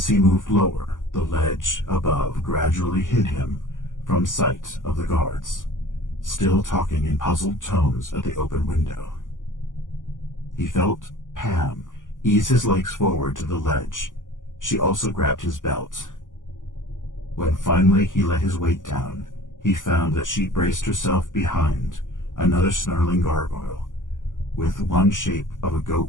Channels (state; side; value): late; right; 0.88 ms